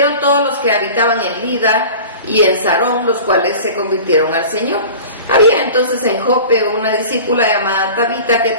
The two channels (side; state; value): both; inverted; correlation -0.39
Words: todos los que habitaban en Lida y en Sarón, los cuales se convirtieron al Señor. Había entonces en Jope una discípula llamada Tabita, que